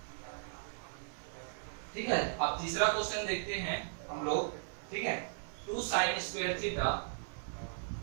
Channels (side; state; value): left; silent; 53 dB below the other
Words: ठीक है, अब तीसरा क्वेश्चन देखते हैं हम लोग, ठीक है। 2 sin square theta